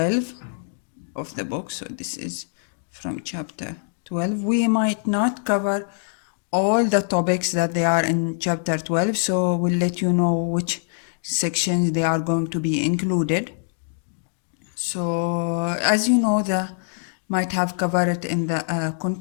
of the book. So this is from chapter 12. We might not cover all the topics that they are in chapter 12, so we'll let you know which sections they are going to be included. So as you know, the might have covered it in the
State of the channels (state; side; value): silent; right; digital silence